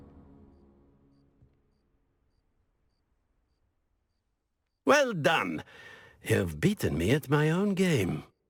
Well done. You've beaten me at my own game.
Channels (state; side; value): identical; both; correlation 1.00